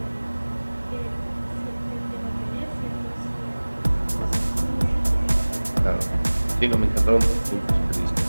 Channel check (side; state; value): both; inverted; correlation -1.00